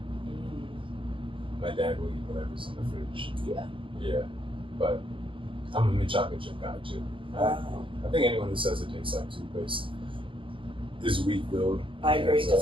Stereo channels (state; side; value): late; left; 0.25 ms